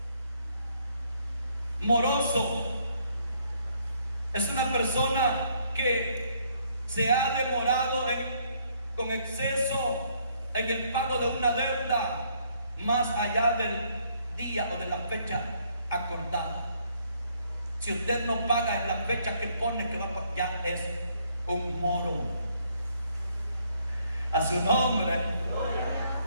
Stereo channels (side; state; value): both; inverted; correlation -0.68